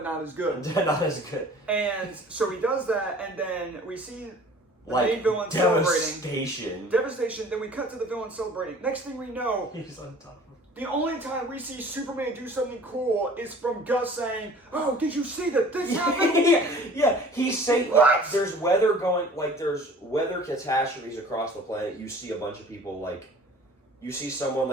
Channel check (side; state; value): both; normal; correlation 0.48